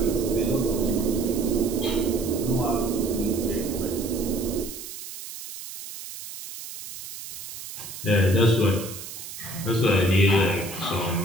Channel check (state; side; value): noise; right; hiss, 11 dB below the sound